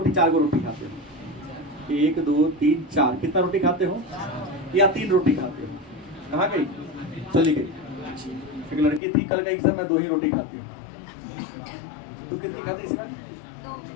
4 गो रोटी खाते हो। 1 2 3 4। कितना रोटी खाते हो? या 3 रोटी खाते हो? कहाँ गई? चली गई। एक लड़की थी, कल गई सर मैं 2 ही रोटी खाती हूँ। तू कितनी खाती इसी बार?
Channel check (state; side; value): drops out; right; at 9.0 s